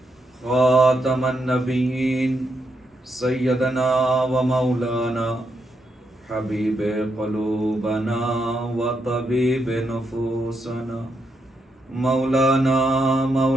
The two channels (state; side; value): normal; both; correlation 0.80